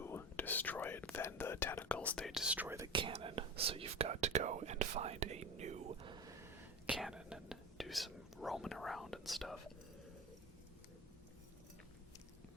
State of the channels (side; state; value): both; normal; correlation 0.26